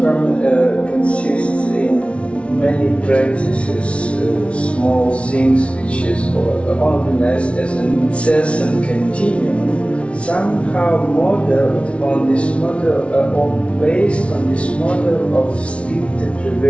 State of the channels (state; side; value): late; right; 0.061 ms